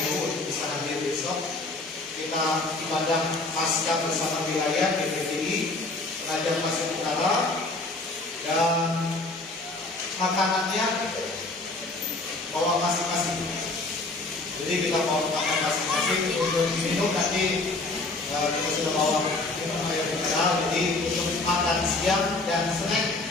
untuk bisa hadir besok. Kita ibadah pasca bersama wilayah BPDI Penajam Pasir Utara, dan makanannya bawa masing-masing. Jadi kita bawa makan masing-masing. Untuk minum nanti kita sudah bawa minum air mineral. Jadi untuk makan siang dan snack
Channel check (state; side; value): quieter; right; 3.1 dB